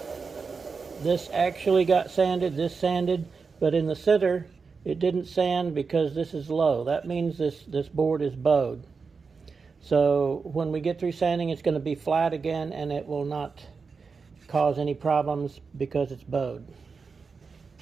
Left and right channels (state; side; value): quieter; left; 5.0 dB